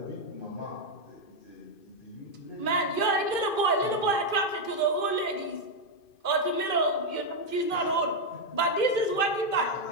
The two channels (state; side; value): late; right; 2.5 ms